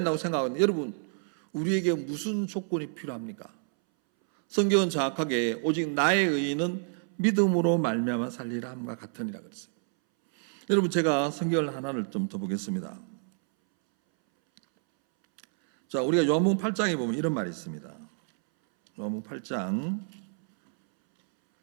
생각하고 있는, 여러분, 우리에게 무슨 조건이 필요합니까? 성경은 정확하게 오직 나의 의인은 믿음으로 말미암아 살리라 함과 같으니라 그랬어요. 여러분, 제가 성경을 하나를 좀 더 보겠습니다. 자, 우리가 요한복음 8장에 보면 이런 말이 있습니다. 요한복음 8장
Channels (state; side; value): silent; left; 59 dB below the other